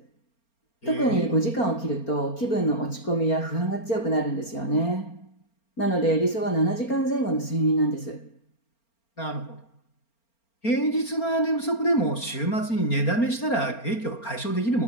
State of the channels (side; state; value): right; late; 4.4 ms